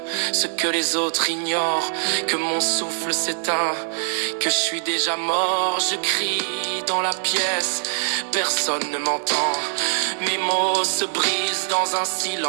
ce que les autres ignorent, que mon souffle s'éteint, que je suis déjà mort. Je crie dans la pièce, personne ne m'entend. Mes mots se brisent dans un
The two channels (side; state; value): left; silent; digital silence